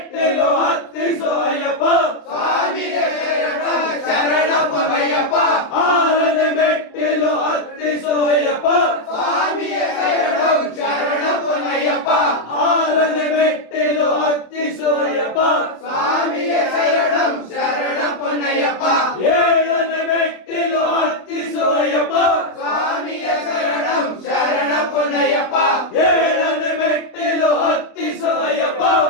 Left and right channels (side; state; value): right; late; 27 ms